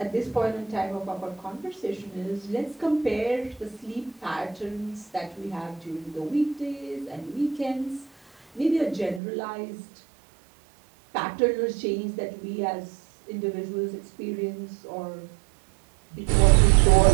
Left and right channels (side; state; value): left; drops out; at 9.2 s